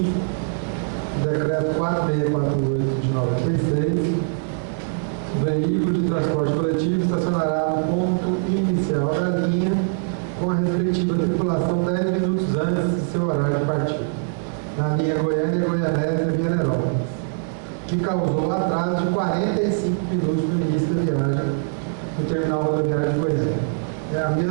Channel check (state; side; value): silent; left; 64 dB below the other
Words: do decreto 4648 de 96, o veículo de transporte coletivo estacionará no ponto inicial da linha com a respectiva tripulação 10 minutos antes de seu horário de partida, na linha Goiânia-Goianésia-Vianópolis, que causou atraso de 45 minutos no início da viagem no terminal rodoviário de Goiânia. É a